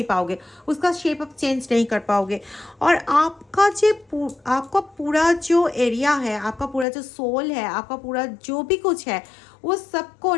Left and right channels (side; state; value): right; drops out; at 6.9 s